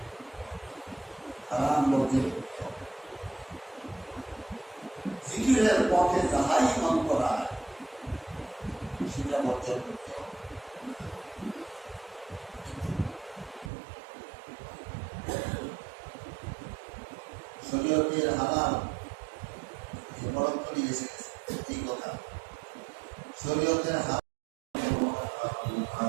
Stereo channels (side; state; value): left; drops out; at 13.7 s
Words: হারাম বর্জন করতে হবে। জিকিরের পথে যাহাই মন করায় সেটা বর্জন করতে হবে। শরীয়তের হালাল বরং করে এসে গেছে, এই কথা শরীয়তের হালাল